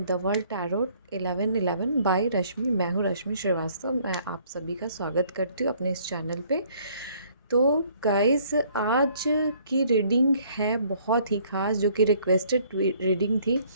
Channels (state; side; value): inverted; both; correlation -0.61